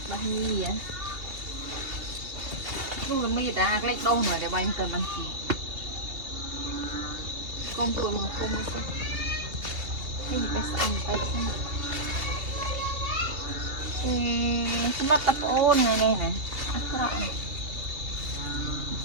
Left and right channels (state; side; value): late; left; 2.8 ms